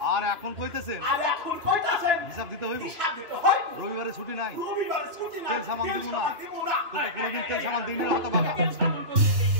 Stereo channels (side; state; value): left; late; 2.9 ms